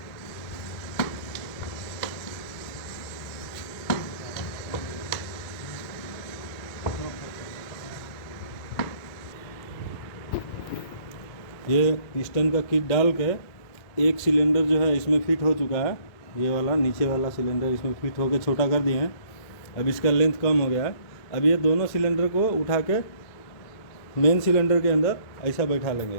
ये पिस्टन का किट डाल के एक सिलेंडर जो है इसमें फिट हो चुका है, ये वाला नीचे वाला सिलेंडर इसमें फिट होके छोटा कर दिए हैं। अब इसका लेंथ कम हो गया है। अब ये दोनों सिलेंडर को उठा के मेन सिलेंडर के अंदर ऐसा बैठा लेंगे।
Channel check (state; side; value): late; right; 2.2 ms